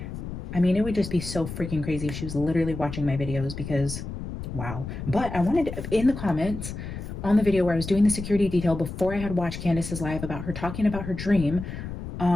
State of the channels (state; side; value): noise; left; rumble, 8 dB below the sound